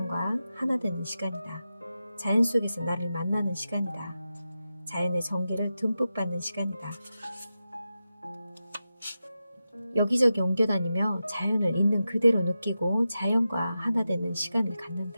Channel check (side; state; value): both; inverted; correlation -0.91